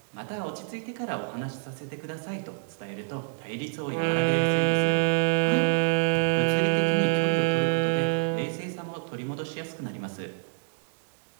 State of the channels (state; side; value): silent; left; digital silence